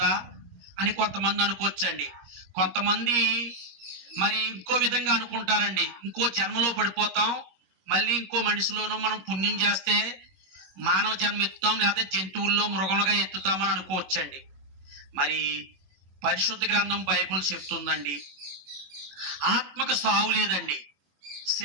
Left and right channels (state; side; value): late; left; 21 ms